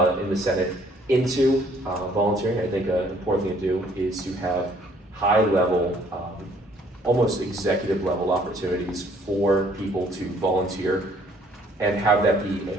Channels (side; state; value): both; normal; correlation 0.61